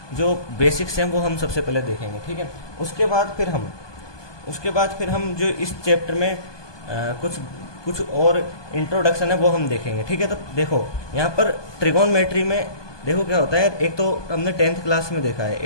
जो बेसिक्स हैं वो हम सबसे पहले देखेंगे, ठीक है। उसके बाद फिर हम जो इस चैप्टर में कुछ और इंट्रोडक्शन है वो हम देखेंगे, ठीक है। तो देखो यहाँ पर ट्रिगोनमेट्री में देखो क्या होता है। एक तो हमने टेंथ क्लास में देखा है,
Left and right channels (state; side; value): late; right; 1.2 ms